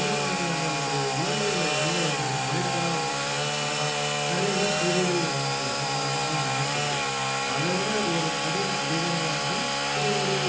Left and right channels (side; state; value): both; identical; correlation 1.00